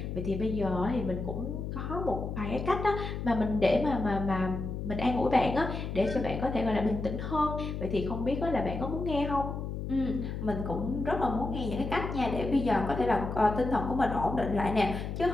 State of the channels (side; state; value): left; noise; hum, 5 dB below the sound